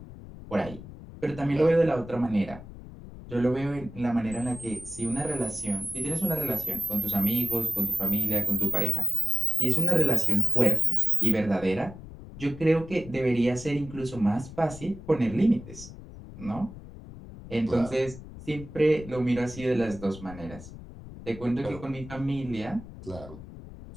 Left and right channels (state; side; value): noise; left; rumble, 14 dB below the sound